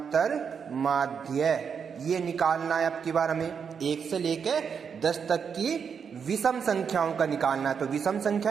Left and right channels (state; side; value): quieter; left; 6.7 dB